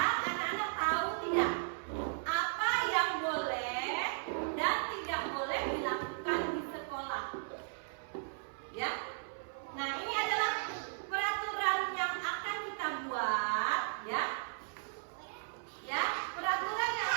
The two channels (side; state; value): left; silent; 54 dB below the other